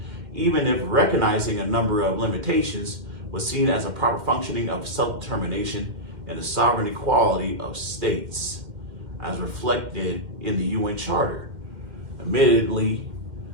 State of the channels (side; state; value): left; late; 2.1 ms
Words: even if recognizing a number of limitations, was seen as a proper functioning of self-determination and the sovereign equality of states, as reflected in the UN Charter. Admittedly,